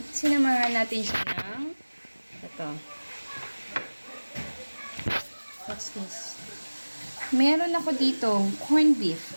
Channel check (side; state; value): both; inverted; correlation -1.00